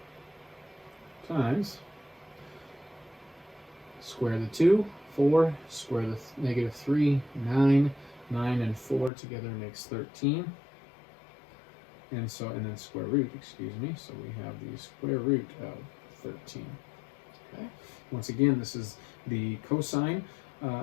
times square the 2, 4, square the -3, 9, 9 and 4 together makes 13. And so, and then square root, excuse me, so we have the square root of 13. Okay. Once again, this is the cosine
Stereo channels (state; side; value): drops out; right; at 9.1 s